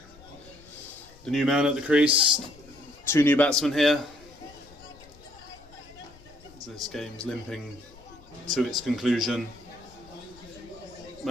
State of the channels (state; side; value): noise; left; rumble, 24 dB below the sound